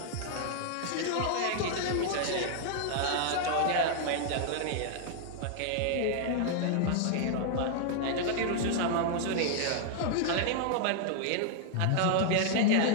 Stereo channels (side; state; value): both; different; correlation -0.01